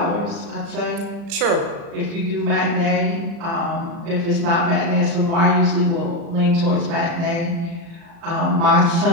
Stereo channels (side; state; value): left; late; 35 ms